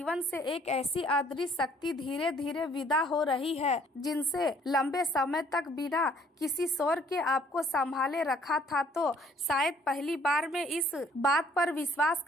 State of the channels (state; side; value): normal; both; correlation 0.61